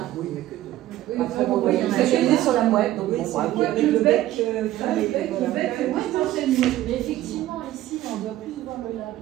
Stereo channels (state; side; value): quieter; left; 14.5 dB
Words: Oui, mais que deux. Après, bon, voyez, on a spécialisé sur la mouette, donc bon, avec le bec, mais effectivement, ici, on doit plus voir le